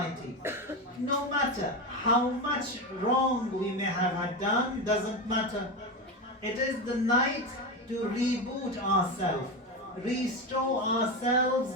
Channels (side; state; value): both; normal; correlation 0.17